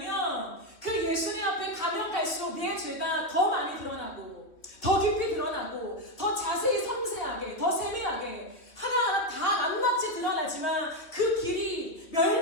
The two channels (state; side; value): late; right; 3.1 ms